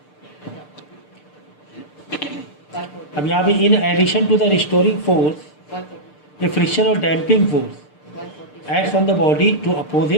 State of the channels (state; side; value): late; right; 6.7 ms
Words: अब यहाँ पे in addition to the restoring force a friction और damping force acts on the body to oppose